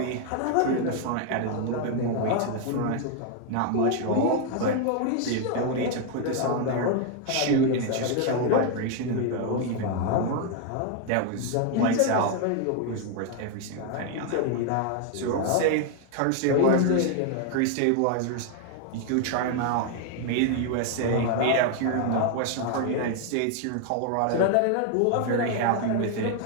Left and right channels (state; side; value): different; both; correlation 0.01